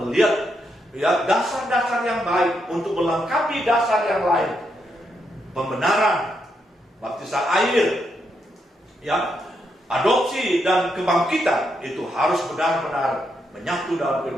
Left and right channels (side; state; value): both; normal; correlation 0.80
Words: ya, dasar-dasar yang baik untuk melengkapi dasar yang lain. Pembenaran, baptisan air, ya, adopsi dan kebangkitan itu harus benar-benar menyatu dalam